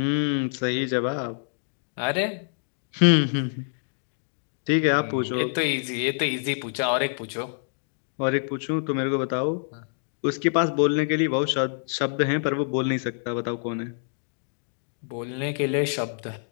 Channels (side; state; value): right; silent; digital silence